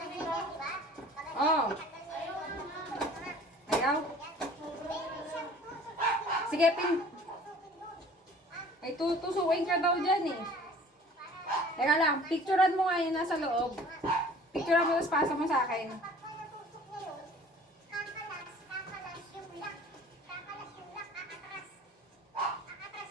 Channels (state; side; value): normal; both; correlation 0.49